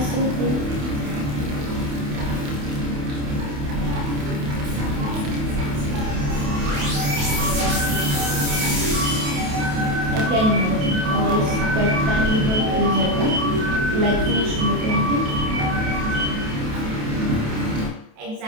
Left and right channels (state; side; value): late; left; 28 ms